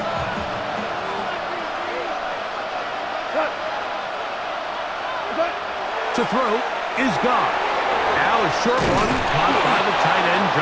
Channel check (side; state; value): both; identical; correlation 1.00